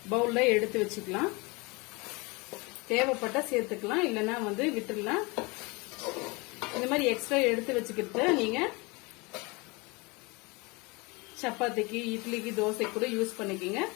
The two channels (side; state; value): right; quieter; 26.7 dB